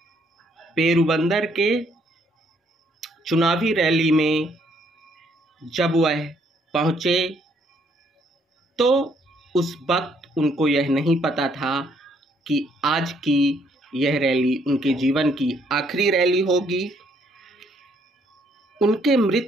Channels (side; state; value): both; normal; correlation 0.68